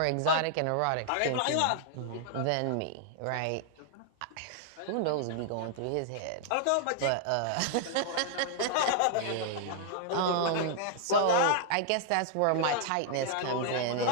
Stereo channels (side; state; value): both; different; correlation -0.01